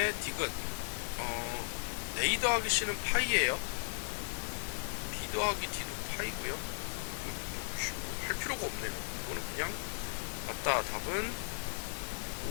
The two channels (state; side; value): silent; right; digital silence